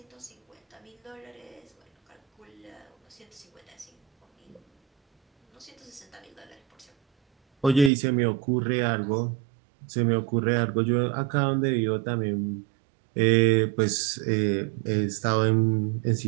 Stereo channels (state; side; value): drops out; left; at 7.9 s